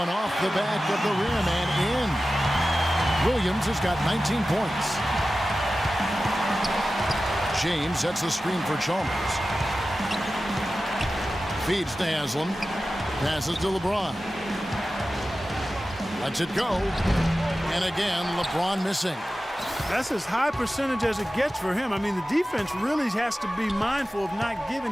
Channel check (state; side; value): normal; both; correlation 0.94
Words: off the back of the rim and in. Williams has got 19 points. James sets the screen for Chalmers. Feeds to Haslam. Passes to LeBron. Lets it go. And again, LeBron missing. That's as high percentage as it gets for him. I mean, the defense really has to be mindful of not giving